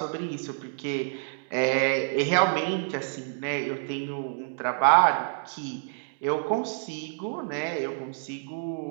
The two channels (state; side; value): silent; left; digital silence